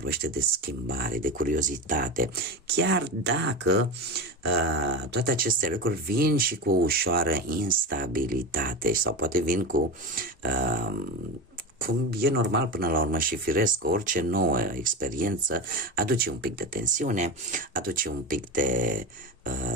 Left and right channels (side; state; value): both; normal; correlation 0.22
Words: de schimbare, de curiozitate, chiar dacă toate aceste lucruri vin și cu o ușoară instabilitate sau poate vin cu cum e normal până la urmă și firesc, orice nouă experiență aduce un pic de tensiune, aduce un pic de